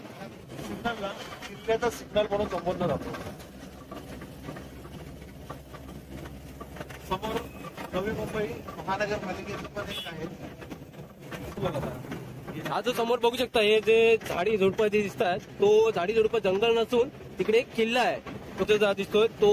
सिग्नलला किल्ल्याचा सिग्नल म्हणून संबोधलं जातो. समोर नवी मुंबई महानगरपालिकेचं पण एक आहे. हा जो समोर बघू शकता हे जे झाडी झुडपं जे दिसतात तो झाडी झुडपं जंगल नसून तिकडे एक किल्ला आहे. तो जो दिसतोय तो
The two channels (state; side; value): identical; both; correlation 1.00